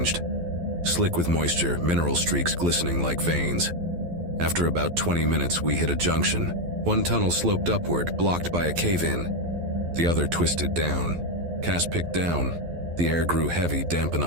Slick with moisture, mineral streaks glistening like veins. After about 20 minutes, we hit a junction. One tunnel sloped upward, blocked by a cave-in. The other twisted down. Cass picked down. The air grew heavy, damp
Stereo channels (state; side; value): late; left; 12 ms